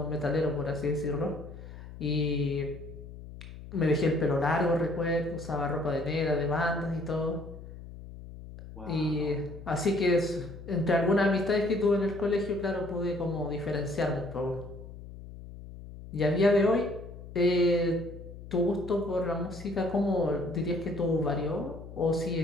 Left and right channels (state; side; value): noise; left; hum, 14 dB below the sound